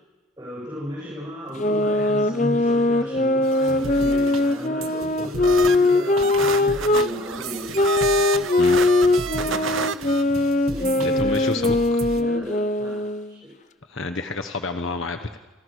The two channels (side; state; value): both; normal; correlation 0.51